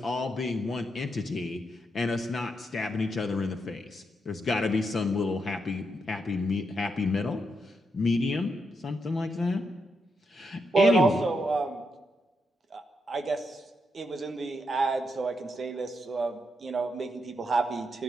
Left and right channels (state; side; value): normal; both; correlation 0.82